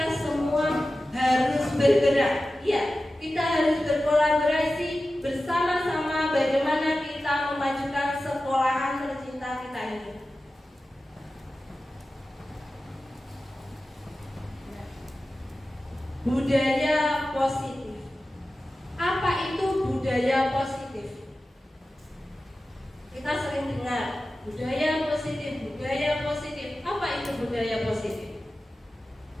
semua harus bergerak. Iya, kita harus berkolaborasi bersama-sama bagaimana kita memajukan sekolahan tercinta kita ini. Budaya positif. Apa itu budaya positif? Kita sering dengar budaya positif, budaya positif. Apa itu budaya positif?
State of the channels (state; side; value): normal; both; correlation 0.94